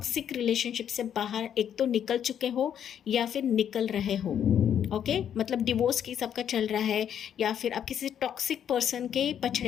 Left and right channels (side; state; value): right; quieter; 9.2 dB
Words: रिलेशनशिप से बाहर एक तो निकल चुके हो या फिर निकल रहे हो। ओके, मतलब डिवोर्स की सबका चल रहा है, या फिर आप किसी टॉक्सिक पर्सन के